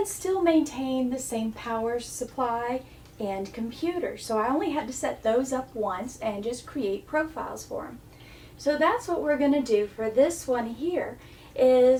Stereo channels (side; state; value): both; identical; correlation 1.00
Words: still maintain the same power supply and computer. So I only had to set those up once and just create profiles for them. So that's what we're going to do for this one here,